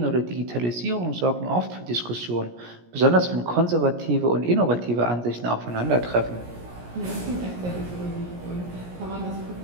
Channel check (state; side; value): late; left; 17 ms